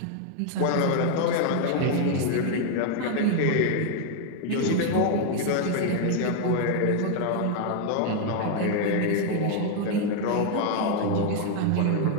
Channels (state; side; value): different; both; correlation 0.00